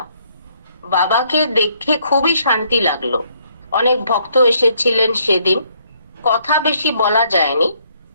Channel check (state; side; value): inverted; both; correlation -0.68